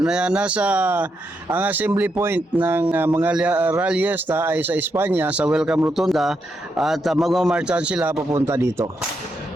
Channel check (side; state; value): both; normal; correlation 0.82